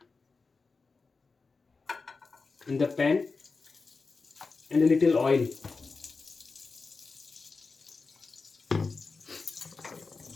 in the pan and a little oil.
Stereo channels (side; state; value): right; quieter; 4.3 dB